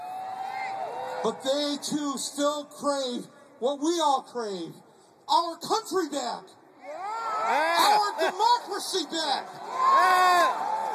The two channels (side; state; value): both; identical; correlation 1.00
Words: But they too still crave what we all crave, our country back, our democracy back,